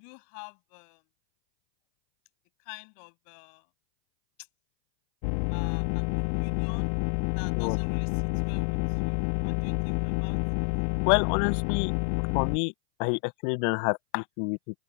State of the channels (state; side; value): silent; right; 59 dB below the other